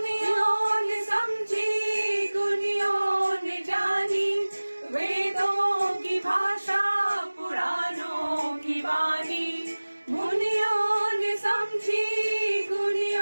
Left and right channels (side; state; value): both; inverted; correlation -1.00